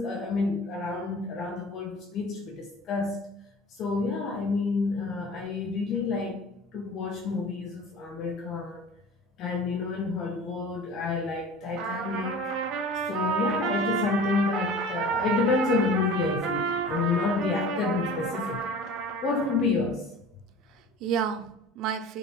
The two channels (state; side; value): normal; both; correlation 0.40